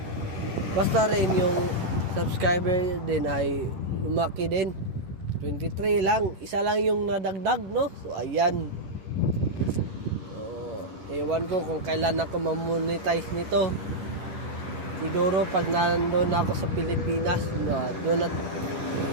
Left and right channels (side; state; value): left; late; 11 ms